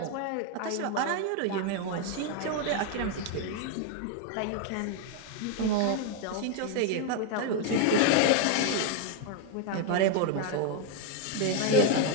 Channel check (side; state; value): both; different; correlation 0.01